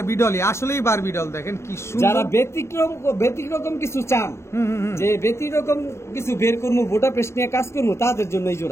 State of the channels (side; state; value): right; late; 0.13 ms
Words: ডলই, আসলেই বারবি ডল। দেখেন কি যারা সুন্দর। ব্যতিক্রম কিছু চান, যে ব্যতিক্রম কিছু বের করবো, বুদাপেস্ট নিয়ে কাজ করবো, তাদের জন্য এই